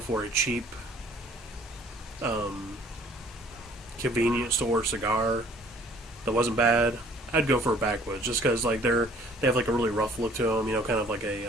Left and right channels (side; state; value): both; normal; correlation 0.56